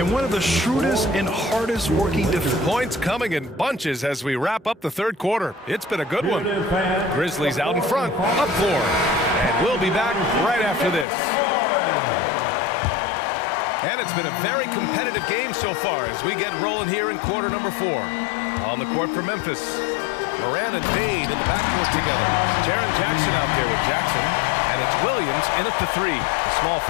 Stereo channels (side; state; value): right; drops out; at 11.1 s